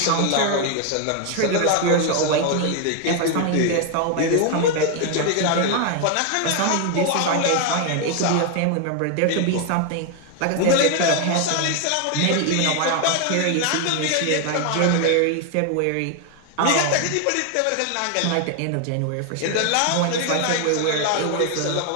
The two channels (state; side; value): different; both; correlation 0.01